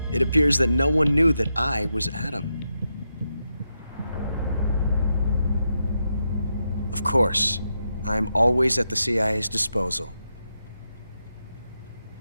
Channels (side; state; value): both; inverted; correlation -0.85